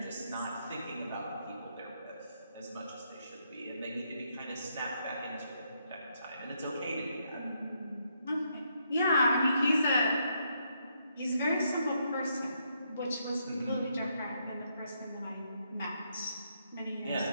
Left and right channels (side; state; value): both; inverted; correlation -0.76